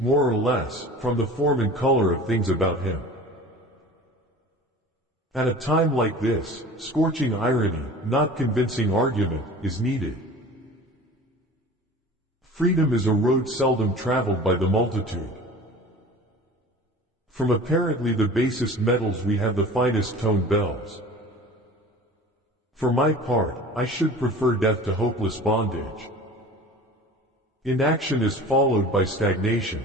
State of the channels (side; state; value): both; normal; correlation 0.40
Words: or less, from the form and color of things about him. At a time like this, scorching irony, not convincing argument, is needed. Freedom is a road seldom traveled by the multitude. From apparently the basest metals we have the finest toned bells. For my part, I should prefer death to hopeless bondage. Inaction is followed by